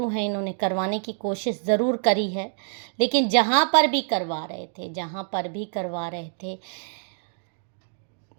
हैं, इन्होंने करवाने की कोशिश ज़रूर करी है, लेकिन जहाँ पर भी करवा रहे थे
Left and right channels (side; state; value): left; silent; 61 dB below the other